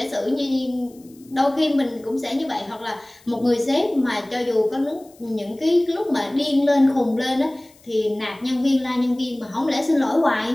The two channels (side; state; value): left; noise; hiss, 28 dB below the sound